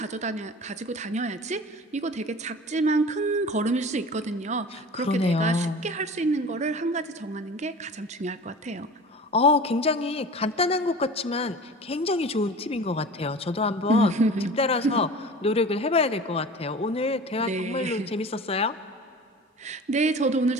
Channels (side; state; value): both; normal; correlation 0.38